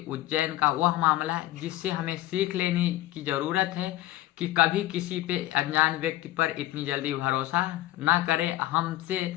उज्जैन का वह मामला जिससे हमें सीख लेने की ज़रूरत है कि कभी किसी पे अनजान व्यक्ति पर इतनी जल्दी भरोसा ना करें। हमसे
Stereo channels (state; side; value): quieter; right; 16.0 dB